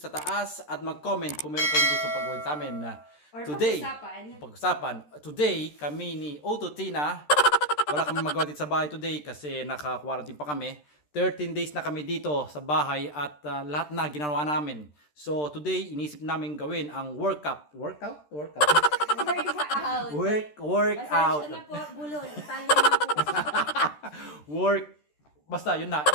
taas at mag-comment kung meron kayong gustong pag-gawin sa amin. Or Pag-usapan. Today, kami ni Otto Tina. Wala kami magawa dito sa bahay today kasi naka-quarantine pa kami. 13 days na kami dito sa bahay at lahat na ginawa namin. So today, inisip namin gawin ang workout. Workout? Workout. Workout. Pasensya na po, bulol. Italian na po. Basta yun na,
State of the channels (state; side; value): late; right; 13 ms